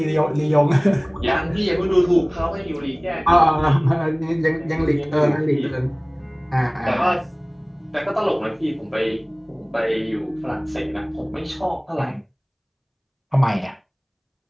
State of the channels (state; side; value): identical; both; correlation 1.00